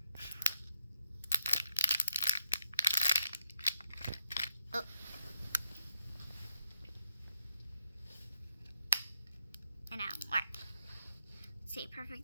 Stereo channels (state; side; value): inverted; both; correlation -0.77